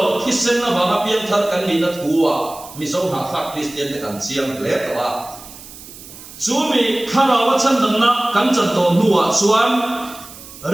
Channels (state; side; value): noise; right; hiss, 17 dB below the sound